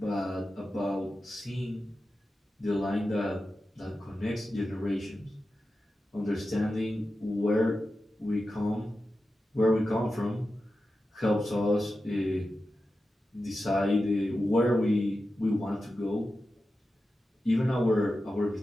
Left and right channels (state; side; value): normal; both; correlation 0.92